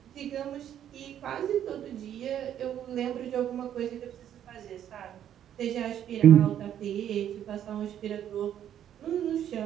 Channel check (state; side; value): quieter; left; 10.3 dB